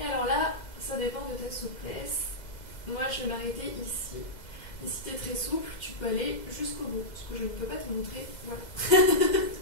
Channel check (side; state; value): right; late; 2.0 ms